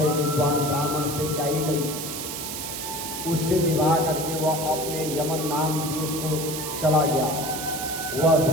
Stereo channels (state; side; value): noise; right; hiss, 6 dB below the sound